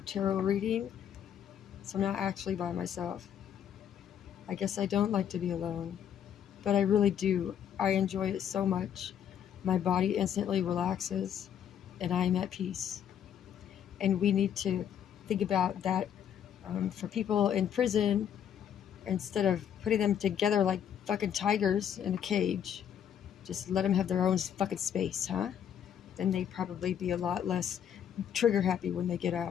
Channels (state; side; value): quieter; right; 9.2 dB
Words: reading. So I'm not actually by myself. I guess I don't like to be alone, but I really do. I enjoy it so much. My body instantly relaxes and I am at peace. And we need to think about that for people in prison instead of putting them together like fucking tigers in a cage. Just let them have their own fucking space, huh? Then they'd probably be a lot less trigger happy when they get